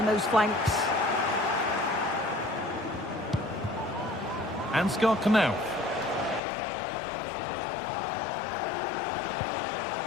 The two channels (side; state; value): right; drops out; at 6.4 s